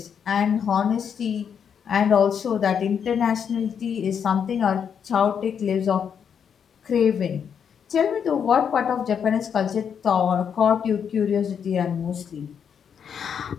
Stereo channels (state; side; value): quieter; right; 7.5 dB